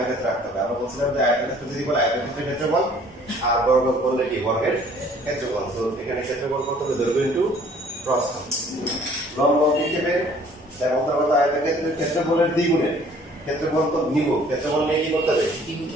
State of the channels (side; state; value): both; normal; correlation 0.55